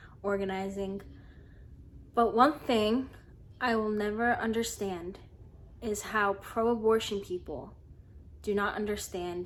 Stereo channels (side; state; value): both; identical; correlation 1.00